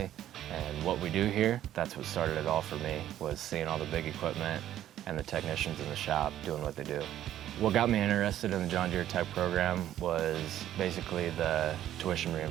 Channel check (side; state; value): left; quieter; 12.1 dB